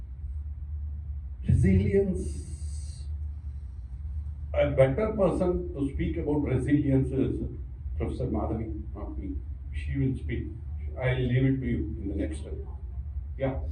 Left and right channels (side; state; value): both; identical; correlation 1.00